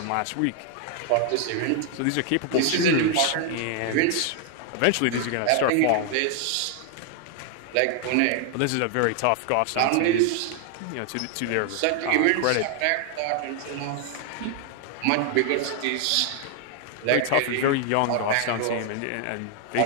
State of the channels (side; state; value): both; different; correlation 0.00